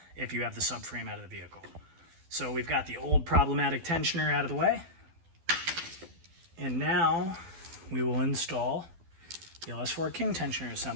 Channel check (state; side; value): late; left; 12 ms